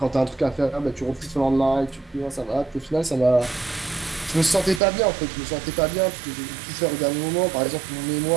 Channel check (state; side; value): drops out; left; at 4.8 s